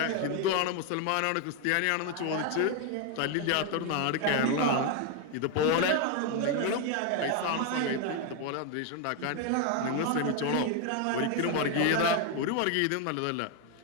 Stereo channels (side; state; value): both; different; correlation 0.01